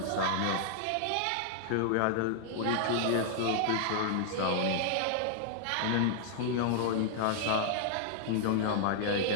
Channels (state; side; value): different; both; correlation -0.01